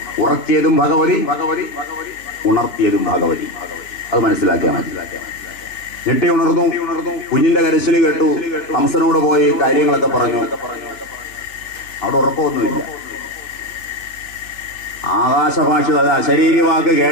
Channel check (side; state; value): right; late; 3.2 ms